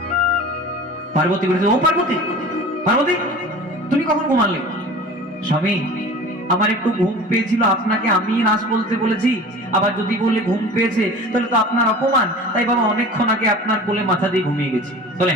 পার্বতী বলেছে, ও পার্বতী, পার্বতী তুমি কখন ঘুমালে? স্বামী, আমার একটু ঘুম পেয়েছিল, আপনাকে আমি রাস বলতে বলেছি, আবার যদি বলে ঘুম পেয়েছে তাহলে তো আপনার অপমান, তাই বাবা অনেকক্ষণ আগে আপনার কোলে মাথা দিয়ে ঘুমিয়ে গেছি। তাহলে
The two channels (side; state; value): both; normal; correlation 0.39